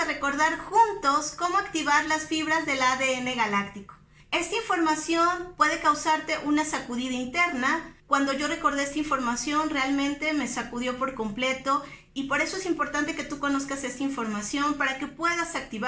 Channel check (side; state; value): both; identical; correlation 1.00